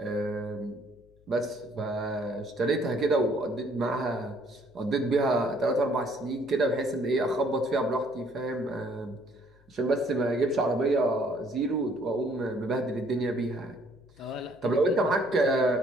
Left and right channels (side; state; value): left; noise; hum, 30 dB below the sound